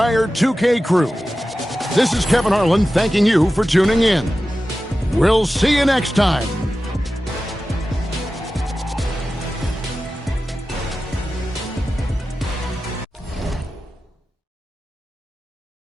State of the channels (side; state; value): both; normal; correlation 0.94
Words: 2K crew, this is Kevin Harlan thanking you for tuning in. We'll see you next time.